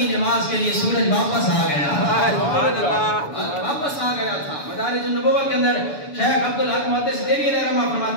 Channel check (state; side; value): late; right; 6.9 ms